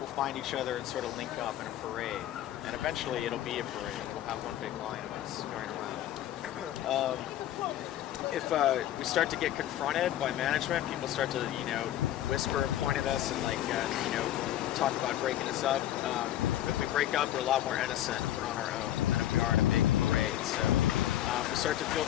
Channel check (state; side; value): quieter; right; 12.7 dB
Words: find each other and sort of link up in a parade. And eventually it'll be a parade. We'll have one big line of us going around. If we start to get confronted by management, people start to, whisper and point at us and talk about breaking us up. If we break up, we're a lot more innocent if we're on our own than if we are in a big parade. So if we start to feel